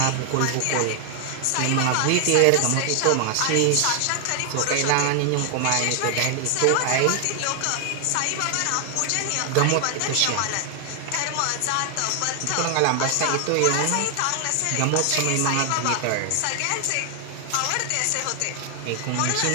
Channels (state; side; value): different; both; correlation 0.00